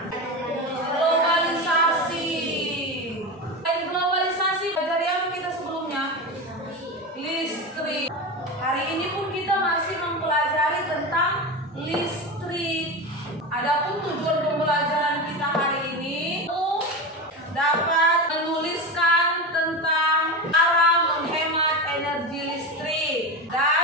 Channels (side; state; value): both; normal; correlation 0.22